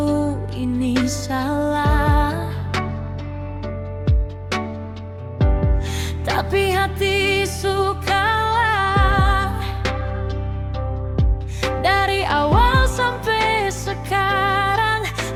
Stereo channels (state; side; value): identical; both; correlation 1.00